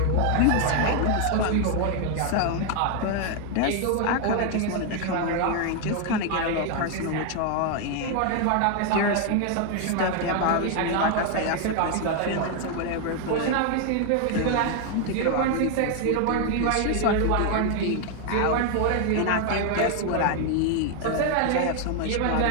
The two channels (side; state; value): both; different; correlation 0.00